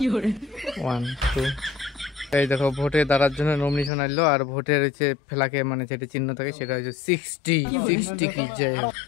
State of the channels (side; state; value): right; drops out; at 3.9 s